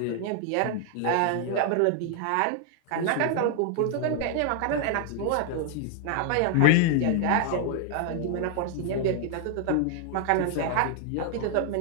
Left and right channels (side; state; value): both; different; correlation 0.00